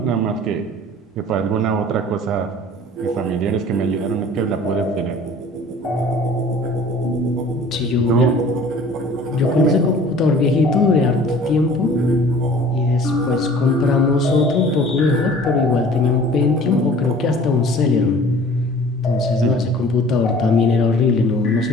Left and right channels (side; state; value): both; normal; correlation 0.48